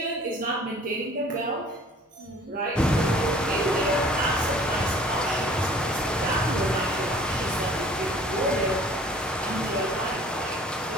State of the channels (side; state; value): both; normal; correlation 0.51